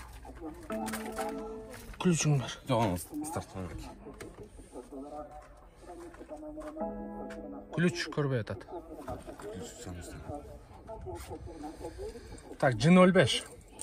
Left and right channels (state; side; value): identical; both; correlation 1.00